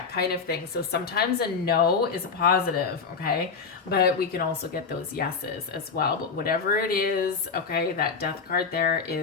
kind of thing. So sometimes a no is a positive, okay? But we can also get those yeses as well. But whatever it is, okay, that Death card there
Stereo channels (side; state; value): right; quieter; 5.3 dB